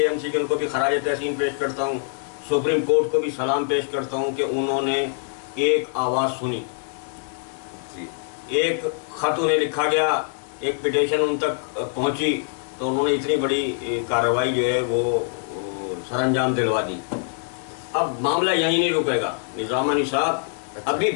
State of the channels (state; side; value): silent; right; 63 dB below the other